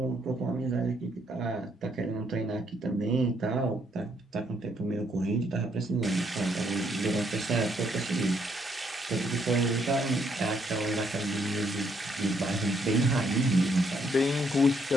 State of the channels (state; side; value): normal; both; correlation 0.71